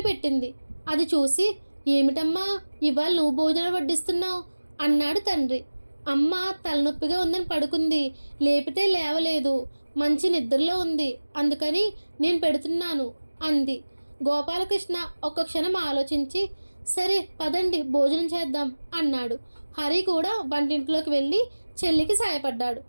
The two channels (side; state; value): both; inverted; correlation -1.00